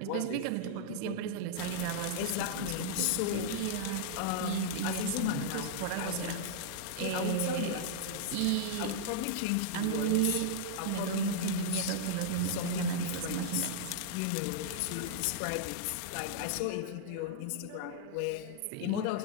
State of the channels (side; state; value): both; different; correlation -0.01